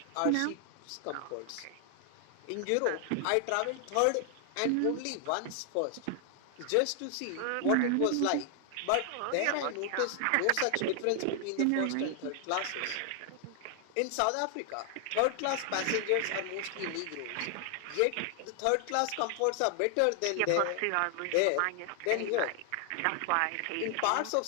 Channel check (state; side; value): different; both; correlation 0.00